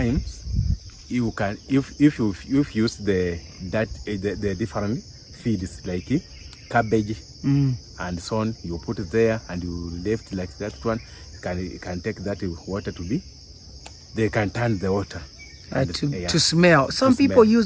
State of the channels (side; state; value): both; identical; correlation 1.00